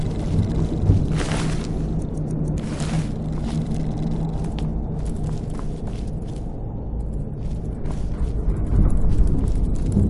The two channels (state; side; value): identical; both; correlation 1.00